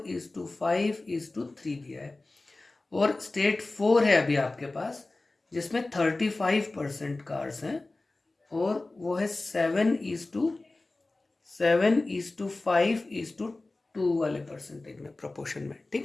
दिया है। और स्टेट फोर है अभी आपके पास जिसमें 35% कार्स हैं और वो है 7:5:2 वाले परसेंटेज में, प्रोपोर्शन में।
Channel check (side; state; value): right; quieter; 3.1 dB